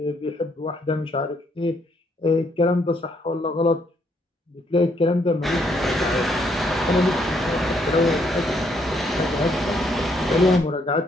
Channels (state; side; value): normal; both; correlation 0.71